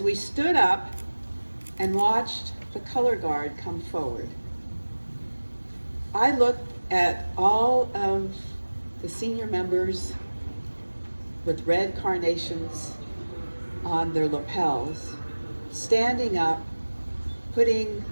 we stood up and watched the color guard come forward, I looked at all of the senior members with red carnations on their lapels, standing up, putting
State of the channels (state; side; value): inverted; both; correlation -1.00